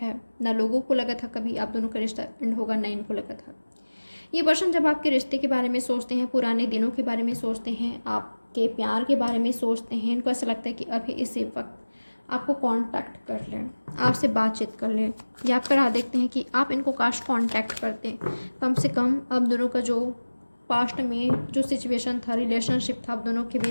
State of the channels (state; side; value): inverted; both; correlation -1.00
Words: है। ना लोगों को लगा था कभी आप दोनों का रिश्ता एंड होगा, ना इनको लगा था। ये पर्सन जब आपके रिश्ते के बारे में सोचते हैं, पुराने दिनों के बारे में सोचते हैं, आपके प्यार के बारे में सोचते हैं, इनको ऐसा लगता है कि अभी इसी वक्त आपको कांटेक्ट कर लें, आपसे बातचीत कर लें, या आप राह देखते हैं कि आप इनको काश कांटेक्ट करते। कम से कम आप दोनों का जो पास्ट में जो सिचुएशन था, रिलेशनशिप था, आप दोनों के